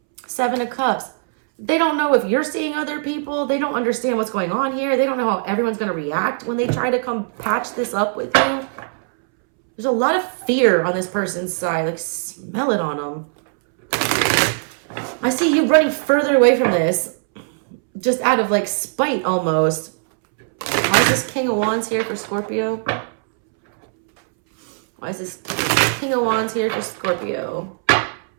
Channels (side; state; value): left; silent; 66 dB below the other